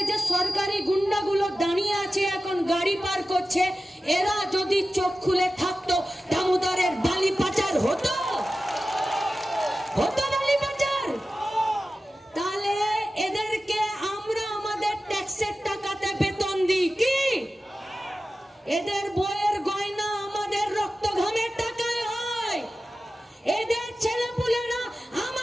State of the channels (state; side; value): normal; both; correlation 0.94